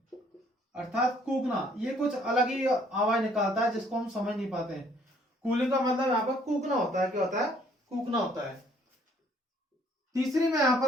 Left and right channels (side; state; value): both; normal; correlation 0.62